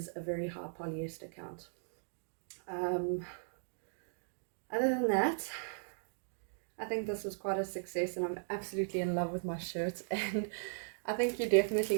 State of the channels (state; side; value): silent; left; digital silence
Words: a very high polyester count. Other than that, I think this was quite a success, and I'm absolutely in love with my shirt. And I think you're definitely